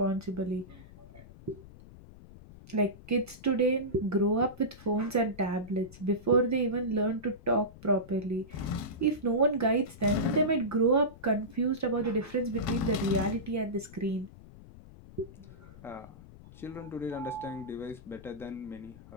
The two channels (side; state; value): left; noise; rumble, 19 dB below the sound